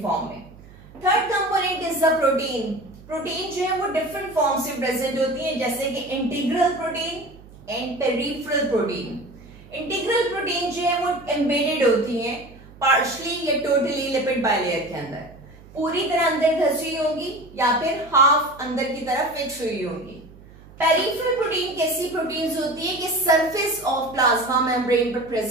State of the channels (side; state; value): right; noise; hum, 22 dB below the sound